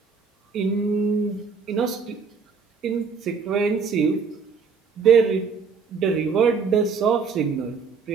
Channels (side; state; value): left; quieter; 5.4 dB